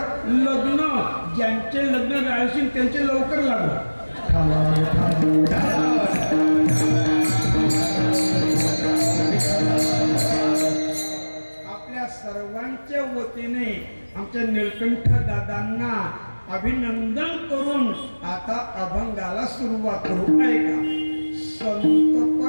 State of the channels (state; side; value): inverted; both; correlation -1.00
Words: लग्न. ज्यांचे लग्न राहशील त्यांचे लवकर लागू. आपल्या सर्वांच्या वतीने आमच्या निळकंठ दादांना अभिनंदन करून आता अभंगाला सुरुवात करू. ऐका,